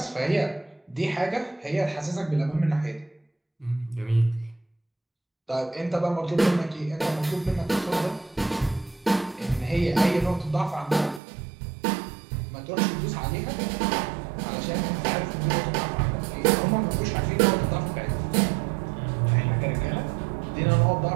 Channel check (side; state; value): left; drops out; at 11.2 s